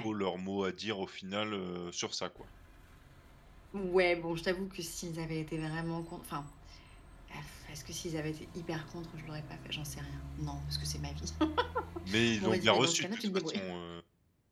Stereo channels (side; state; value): both; identical; correlation 1.00